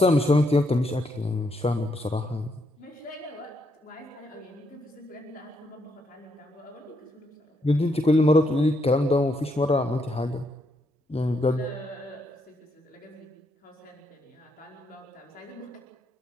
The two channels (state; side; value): normal; both; correlation 0.77